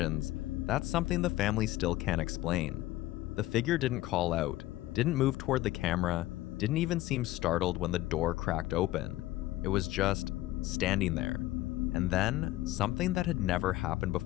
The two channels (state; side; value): quieter; right; 16.4 dB